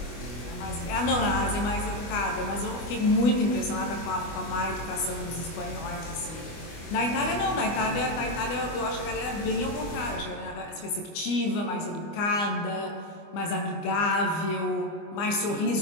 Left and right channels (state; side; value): late; right; 25 ms